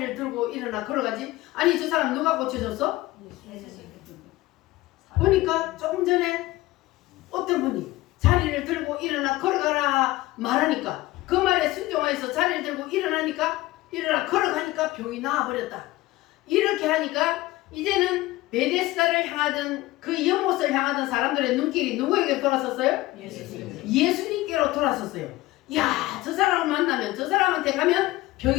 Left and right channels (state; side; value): quieter; right; 18.2 dB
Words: 들고 일어나 걸어가지? 아니 저 사람 누가 고쳐줬어? 보니까 조금 전에 어떤 분이 자리를 들고 일어나 걸어가라 말하니까 그 말에 순종해서 자리를 들고 일어나니까 일어나 걸어가니까 병이 나와버렸다. 이렇게 하니까 이제는 베데스다를 향하던 그 연못을 향하던 사람들의 눈길이 누구에게 돌아섰어요? 예수님께로 돌아섰어요. 야, 저 사람을 만나면 저 사람한테 가면